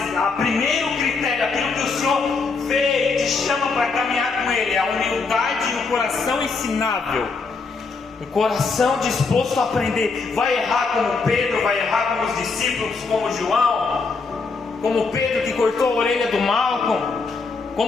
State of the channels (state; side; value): quieter; right; 4.4 dB